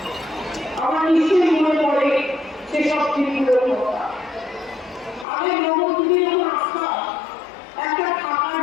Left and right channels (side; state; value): right; drops out; at 5.2 s